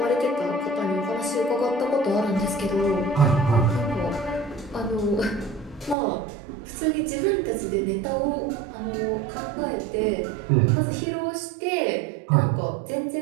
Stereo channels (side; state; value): left; drops out; at 6.0 s